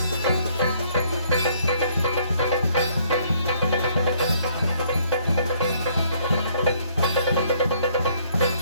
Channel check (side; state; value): both; inverted; correlation -0.65